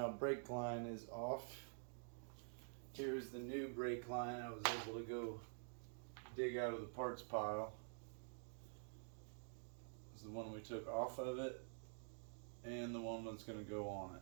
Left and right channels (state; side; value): silent; left; digital silence